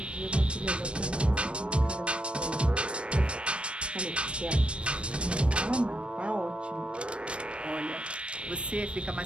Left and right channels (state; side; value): late; left; 0.058 ms